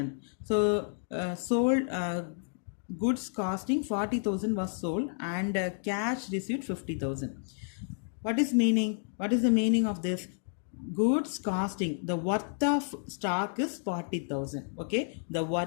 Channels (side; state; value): right; silent; digital silence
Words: So sold goods costing 40,000 was sold, and cash received 50,000. What is meaning? What is the meaning of this? Goods costing, the worth of stock is 40,000. Okay, the